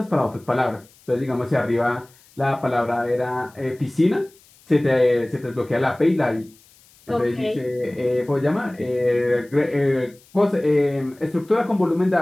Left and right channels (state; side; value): noise; left; hiss, 28 dB below the sound